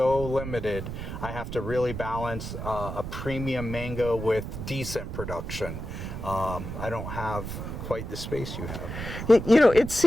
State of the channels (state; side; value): noise; right; rumble, 7 dB below the sound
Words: limited, I have to really balance a premium mango with decent production. I don't have quite the space you have. It